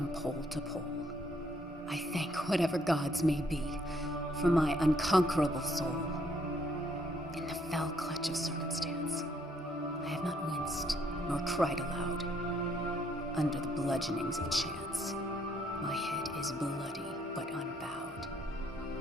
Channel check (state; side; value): normal; both; correlation 0.69